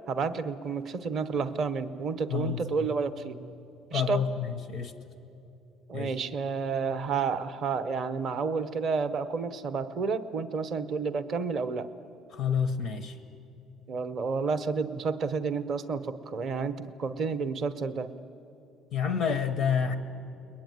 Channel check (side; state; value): both; normal; correlation 0.58